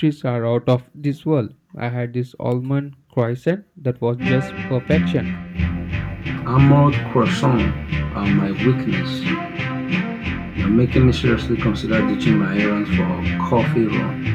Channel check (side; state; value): both; identical; correlation 1.00